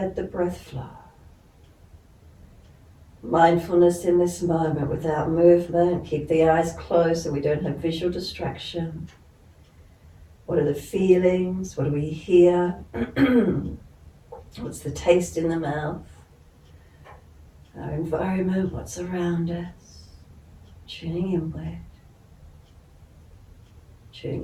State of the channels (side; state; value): both; identical; correlation 1.00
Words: the breath flow. Mindfulness in this moment without movement. Keep the eyes closed so we don't have visual distraction. What are the feelings? What do we hear? What's the taste in the mouth? Our environment, what's around us? Tuning inward.